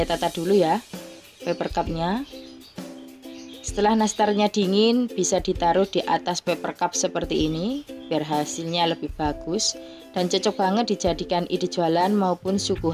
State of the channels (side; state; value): both; identical; correlation 1.00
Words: tata dulu ya paper cupnya. Setelah nastarnya dingin, bisa ditaruh di atas paper cup seperti ini biar hasilnya lebih bagus dan cocok banget dijadikan ide jualan maupun